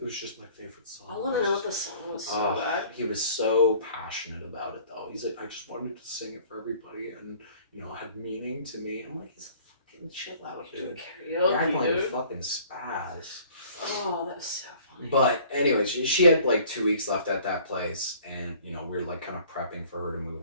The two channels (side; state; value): both; inverted; correlation -0.53